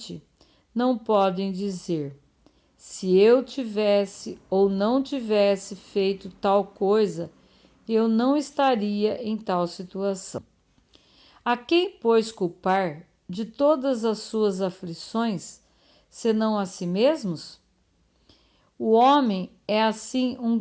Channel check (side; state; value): both; identical; correlation 1.00